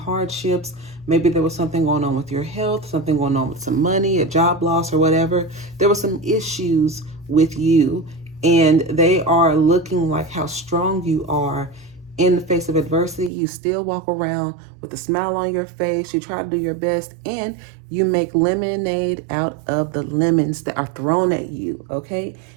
Maybe there was something going on with your health, something going on with some money, a job loss or whatever. There were some issues with you, and they are looking like how strong you are in the face of adversity. You still walk around with a smile on your face. You try to do your best, and you make lemonade out of the lemons that are thrown at you, okay,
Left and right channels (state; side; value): drops out; left; at 13.3 s